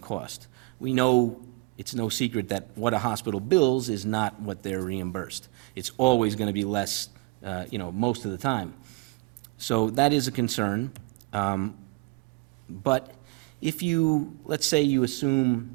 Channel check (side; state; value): left; quieter; 26.6 dB